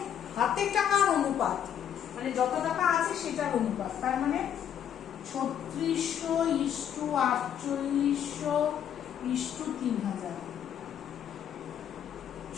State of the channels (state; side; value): quieter; right; 9.4 dB